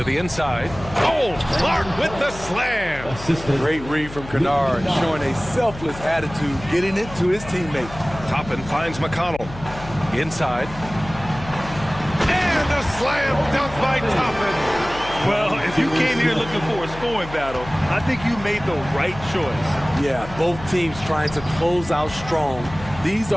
the inside. Oh, Clark with the slam. Great read from Kennard, showing a selfless attitude, getting it to his teammate. Toppin finds McConnell. Inside. And a slam dunk by Toppin. Well, if you came here looking for a scoring battle, I think you made the right choice. Yeah, both teams trying to close out strong. These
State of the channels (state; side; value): noise; left; hum, 14 dB below the sound